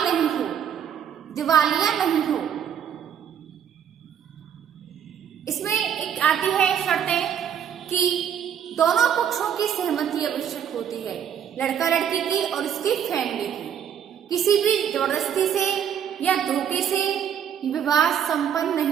नहीं हो, दिवालिया नहीं हो। इसमें एक आती है शर्तें कि दोनों पक्षों की सहमति आवश्यक होती है, लड़का लड़की की और उसकी फैमिली की। किसी भी जबरदस्ती से या धोखे से विवाह संपन्न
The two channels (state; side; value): quieter; left; 8.8 dB